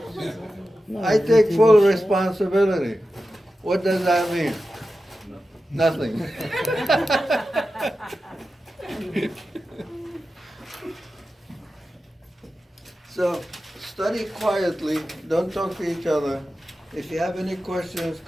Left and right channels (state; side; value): normal; both; correlation 0.93